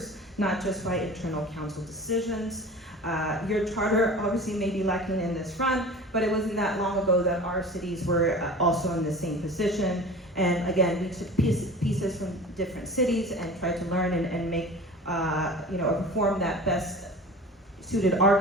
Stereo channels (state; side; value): normal; both; correlation 0.38